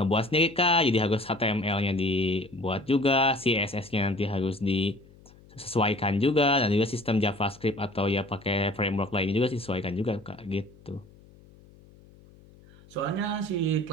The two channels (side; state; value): left; noise; hum, 25 dB below the sound